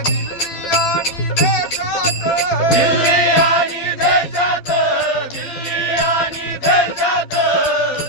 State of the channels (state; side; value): late; right; 12 ms